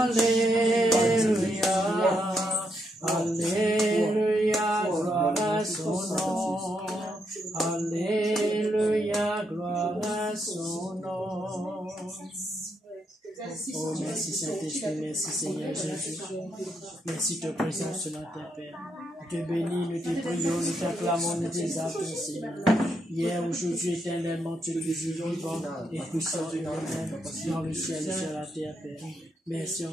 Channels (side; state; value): both; normal; correlation 0.79